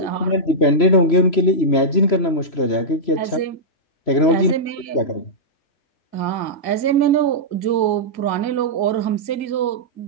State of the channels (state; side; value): late; right; 3.0 ms